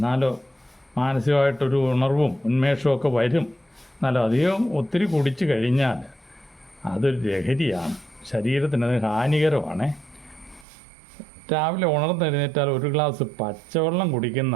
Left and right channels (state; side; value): drops out; left; at 10.7 s